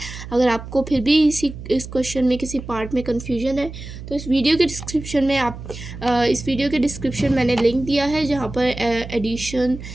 अगर आपको फिर भी इस क्वेश्चन में किसी पार्ट में कन्फ्यूजन है तो इस वीडियो के डिस्क्रिप्शन में इस वीडियो के डिस्क्रिप्शन मैंने लिंक दिया है जहाँ पर एडिशन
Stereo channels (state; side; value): noise; right; hum, 12 dB below the sound